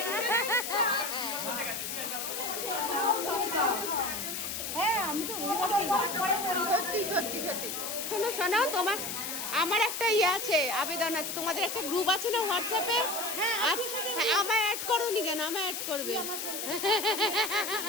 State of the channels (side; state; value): left; noise; hiss, 4 dB below the sound